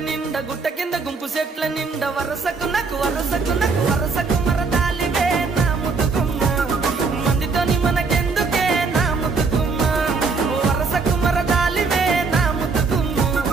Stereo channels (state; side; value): quieter; left; 4.6 dB